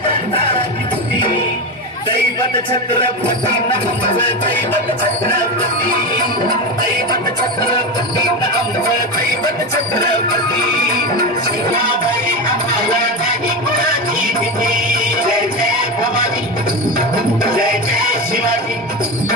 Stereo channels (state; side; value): normal; both; correlation 0.18